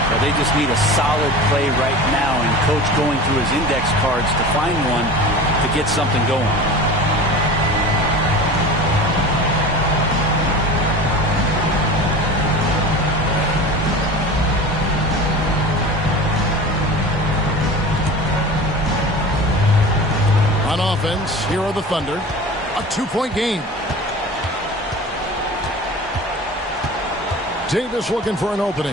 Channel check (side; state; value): both; normal; correlation 0.35